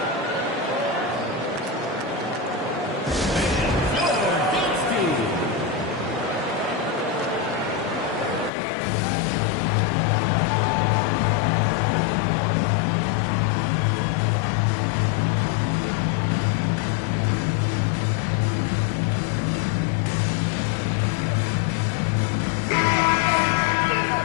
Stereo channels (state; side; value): drops out; right; at 8.5 s